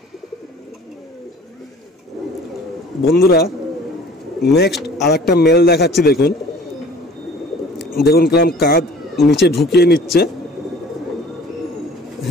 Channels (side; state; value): both; normal; correlation 0.48